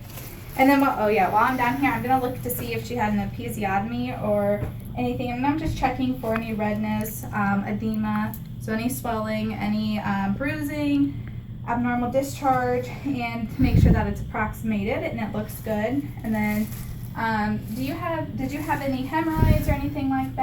And then, while I'm down here, I'm gonna look to see if she had an episiotomy or anything. And I'm just checking for any redness, edema, so any swelling, any bruising, abnormal discharge, and to make sure that it's approximated and it looks good. And then, did you have any hemorrhoids or anything like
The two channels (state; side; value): identical; both; correlation 1.00